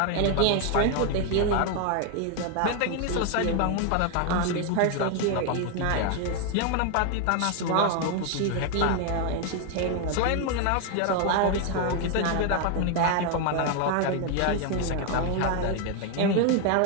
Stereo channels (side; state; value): both; different; correlation 0.01